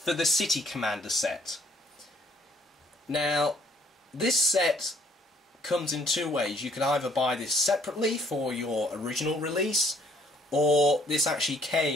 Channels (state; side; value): normal; both; correlation 0.63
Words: the City Commander set. Now, this set comes in two ways. You can either buy this separately for your original release, or this actually